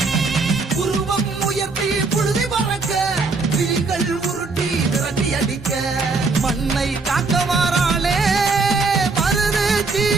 உருவம் உயர்த்தி புழுதி பறக்க, விழிகள் உருட்டி விரட்டி அடிக்க. மண்ணை காக்க வாராளே மருது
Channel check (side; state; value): left; quieter; 4.1 dB